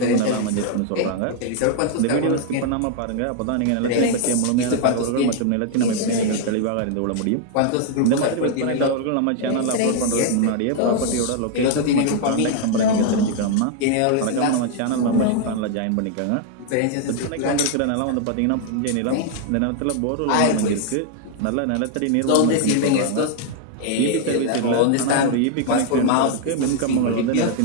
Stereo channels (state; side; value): different; both; correlation 0.00